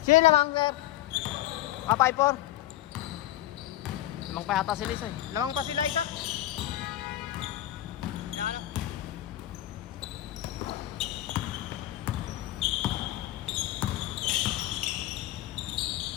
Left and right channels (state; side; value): quieter; right; 14.3 dB